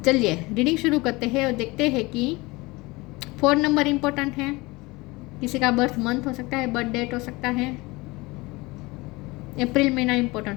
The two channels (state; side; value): quieter; right; 23.0 dB